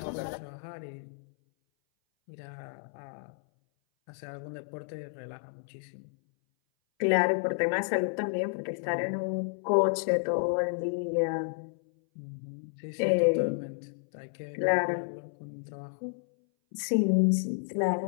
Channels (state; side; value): silent; right; 57 dB below the other